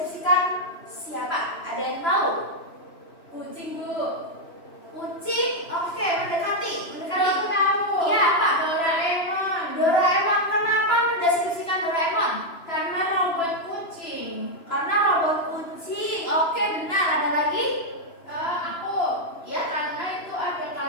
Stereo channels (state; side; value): late; right; 2.9 ms